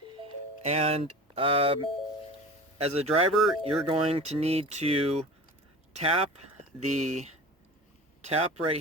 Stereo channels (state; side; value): normal; both; correlation 0.36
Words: and as a driver you're going to need to tap